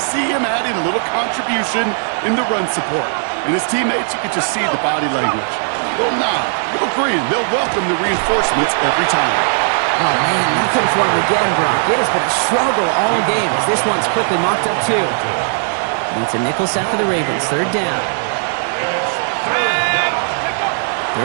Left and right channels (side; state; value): left; silent; 68 dB below the other